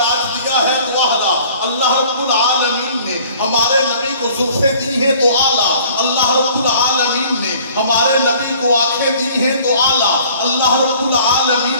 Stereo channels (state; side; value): inverted; both; correlation -0.52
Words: دیا ہے تو اعلیٰ، اللہ رب العالمین نے ہمارے نبی کو زلفیں دی ہیں تو اعلیٰ، اللہ رب العالمین نے ہمارے نبی کو آنکھیں دی ہیں تو اعلیٰ، اللہ رب